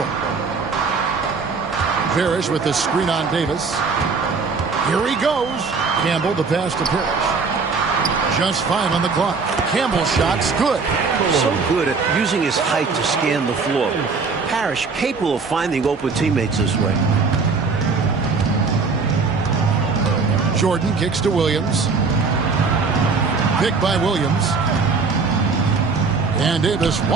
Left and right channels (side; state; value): left; quieter; 4.7 dB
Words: Parrish with the screen on Davis. Here he goes. Campbell, the pass to Parrish. Just 5 on the clock. Campbell's shot's good. So good at using his height to scan the floor. Parrish capable of finding open teammates this way. Jordan kicks to Williams. Pick by Williams. And Davis